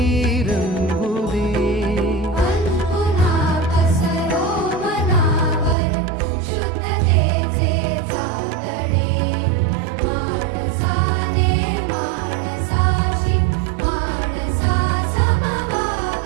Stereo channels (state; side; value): drops out; left; at 5.8 s